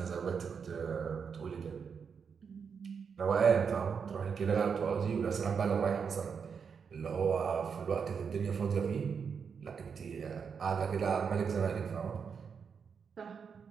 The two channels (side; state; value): left; quieter; 6.3 dB